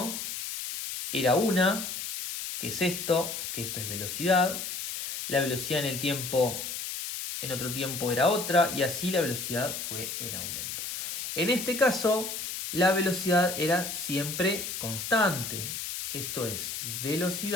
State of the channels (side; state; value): left; noise; hiss, 5 dB below the sound